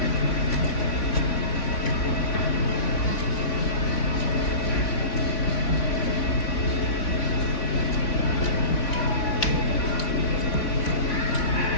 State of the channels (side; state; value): right; late; 3.5 ms